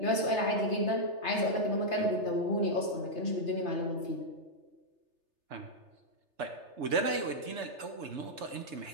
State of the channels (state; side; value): late; left; 3.3 ms